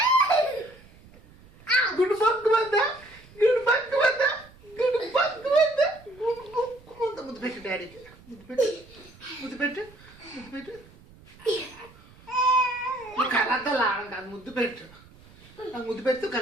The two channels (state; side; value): noise; right; rumble, 24 dB below the sound